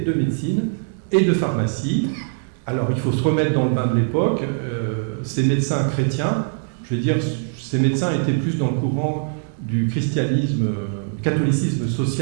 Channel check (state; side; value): silent; left; digital silence